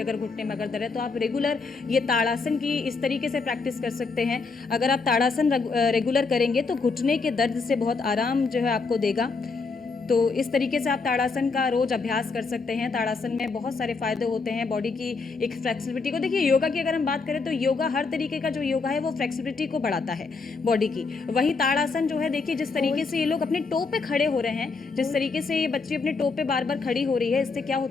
अगर घुटने में अगर दर्द है, तो आप रेगुलर ये ताड़ासन की इस तरीके से प्रैक्टिस कर सकते हैं। अगर आप ताड़ासन रेगुलर करेंगे तो घुटने के दर्द से बहुत आराम जो है आपको देगा। तो इस तरीके से आप ताड़ासन का रोज अभ्यास कर सकते हैं। ताड़ासन में बहुत सारे फायदे होते हैं बॉडी की एक फ्लेक्सिबिलिटी को। देखिए, योगा की अगर हम बात करें तो योगा, हर तरीके का जो योगा है वो फ्लेक्सिबिलिटी को बढ़ाता है बॉडी की। वहीं ताड़ासन जो है, देखिए जिस तरीके से ये लोग अपने टो पे खड़े हो रहे हैं, जिस तरीके से ये बच्ची अपने टो पे बार बार खड़ी हो रही है, इससे क्या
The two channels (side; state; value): right; quieter; 4.4 dB